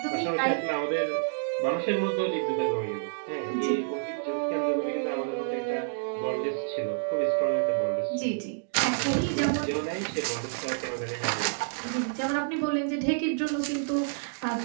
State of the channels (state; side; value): silent; left; digital silence